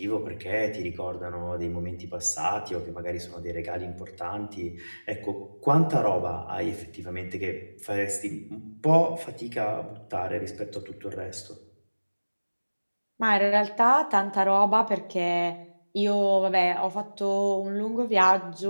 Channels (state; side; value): inverted; both; correlation -1.00